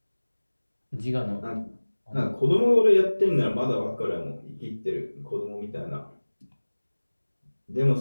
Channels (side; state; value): both; inverted; correlation -1.00